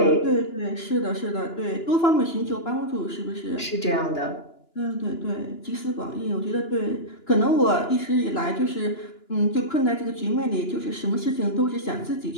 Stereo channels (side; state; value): right; late; 2.9 ms